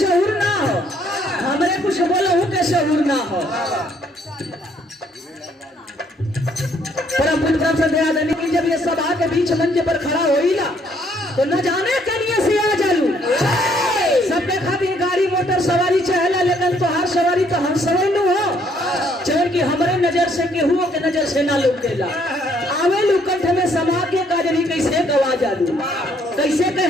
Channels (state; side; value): normal; both; correlation 0.67